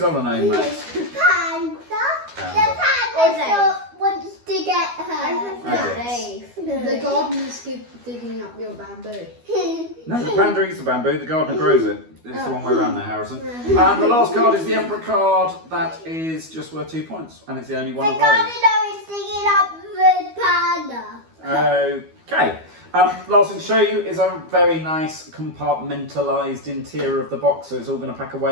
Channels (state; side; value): late; left; 12 ms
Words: other name, Max? Panda. Panda. The panda wants to get her. The gardener's digging up your bamboo. No, the panda eats the bamboo, the gardener grows it. It's the wrong way around there, Harrison. And the last card is the Emperor card. That is just worth 2 points. And it's the only one The of those. gardener is digging up the panda. Okay. Last thing to show you is a very nice compartmentalised interior of the box, so it's all going to pack